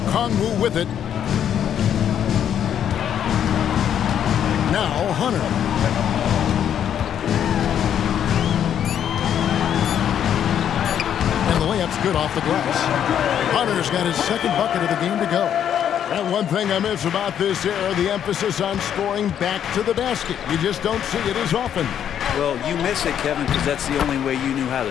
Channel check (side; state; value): right; quieter; 9.4 dB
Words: with it. Now Hunter. And the layup's good off the glass. Hunter's got his second bucket of the game to go. And one thing I miss about this era, the emphasis on scoring back to the basket. You just don't see it as often. Well, you miss it, Kevin, because that's the only way you knew how